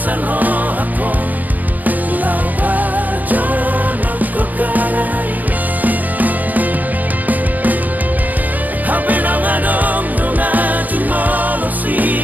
roh ako, Lau pajono ko karai, hape na ngadong nunga jumolo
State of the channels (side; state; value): left; late; 0.081 ms